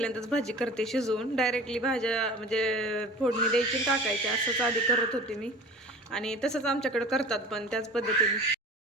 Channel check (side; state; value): both; normal; correlation 0.40